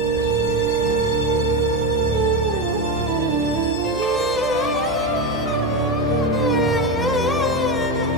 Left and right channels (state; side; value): noise; right; hum, 15 dB below the sound